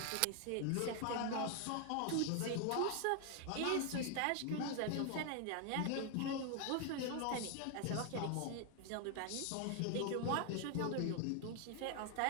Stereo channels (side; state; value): both; different; correlation 0.00